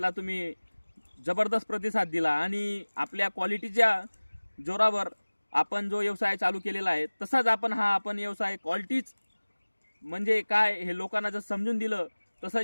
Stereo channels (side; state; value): both; inverted; correlation -1.00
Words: तुम्ही जबरदस्त प्रतिसाद दिला आणि आपल्या क्वालिटीच्या जोरावर आपण जो व्यवसाय चालू केलेला आहे, तसाच आपण व्यवसाय क्वालिटीच म्हणजे काय हे लोकांना जर समजून दिलं,